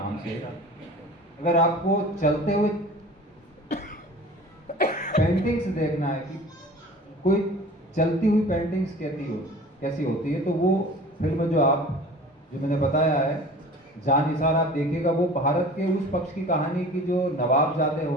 से। अगर आपको चलते हुए पेंटिंग्स देखना है कि कोई चलती हुई पेंटिंग्स कैसी होती है, तो वो फिल्म जो मैंने बताया है जान निसार, आप देखिएगा। वो भारत के उस पक्ष की कहानी की जो नवाबजादे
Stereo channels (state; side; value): normal; both; correlation 0.42